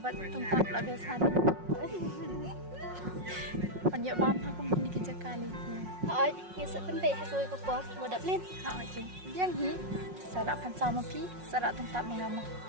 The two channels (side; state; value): left; late; 5.5 ms